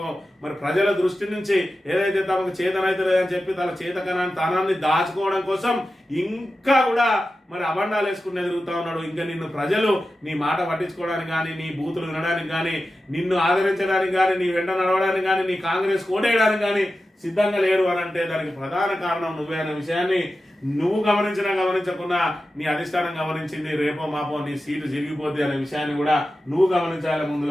మరి ప్రజల దృష్టి నుంచి ఏదైతే తమకు చేతనైతే లేదని చెప్పి తన చేతకనాన్ని తనాన్ని దాచుకోవడం కోసం ఇంకా కూడా మరి అబండాలు వేసుకుని ఎదుగుతా ఉన్నాడు. ఇంకా నిన్ను ప్రజలు నీ మాట పట్టించుకోవడానికి కానీ, నీ బూతులు వినడానికి కానీ, నిన్ను ఆదరించడానికి కానీ, నీ వెంట నడవడానికి కానీ, నీ కాంగ్రెస్ కోటేయడానికి కానీ సిద్ధంగా లేరు అని అంటే దానికి ప్రధాన కారణం నువ్వే అనే విషయాన్ని నువ్వు గమనించినా గమనించకుండా నీ అధిష్టానం గమనించింది. రేపో మాపో నీ సీటు జరిగిపోద్ది అనే విషయాన్ని కూడా నువ్వు గమనించాలి.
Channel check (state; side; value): normal; both; correlation 0.93